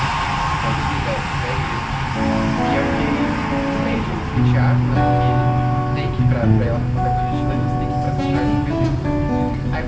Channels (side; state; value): both; identical; correlation 1.00